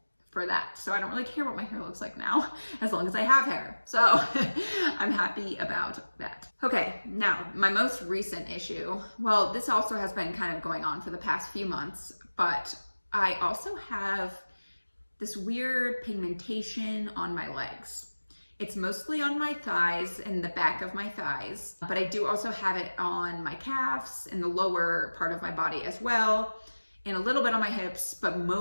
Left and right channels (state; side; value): inverted; both; correlation -1.00